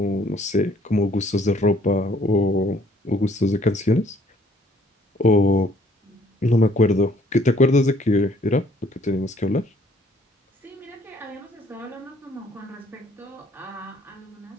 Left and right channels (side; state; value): both; normal; correlation 0.62